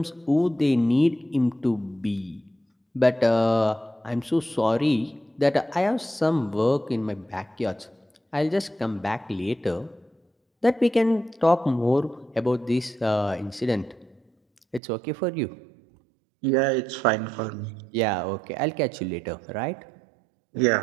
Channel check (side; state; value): left; drops out; at 14.8 s